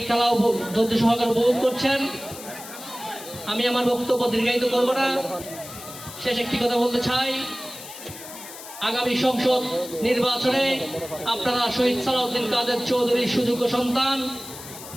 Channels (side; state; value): left; noise; hiss, 14 dB below the sound